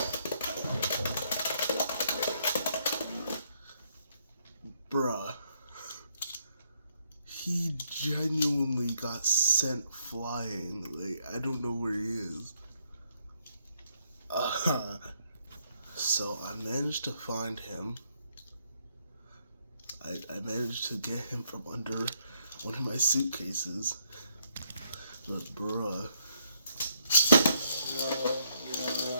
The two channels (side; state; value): both; inverted; correlation -0.72